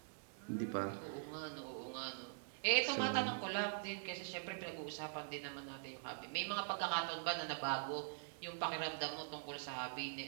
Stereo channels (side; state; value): left; silent; digital silence